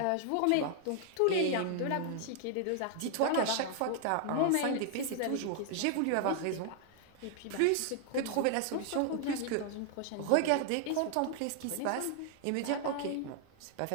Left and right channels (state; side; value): different; both; correlation 0.00